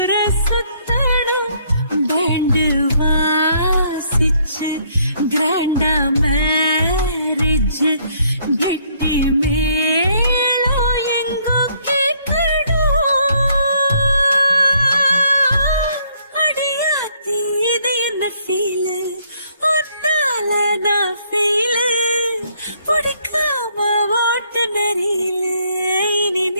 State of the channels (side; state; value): both; inverted; correlation -0.67